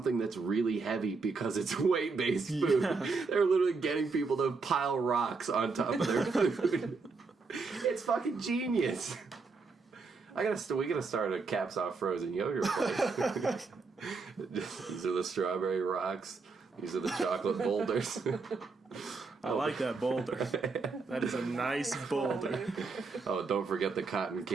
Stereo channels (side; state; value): left; quieter; 4.4 dB